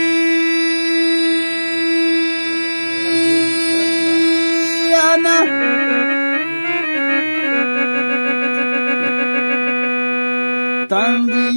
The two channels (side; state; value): both; inverted; correlation -1.00